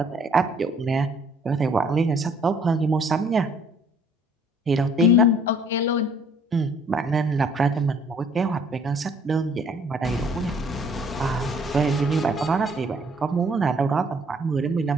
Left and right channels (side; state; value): both; normal; correlation 0.59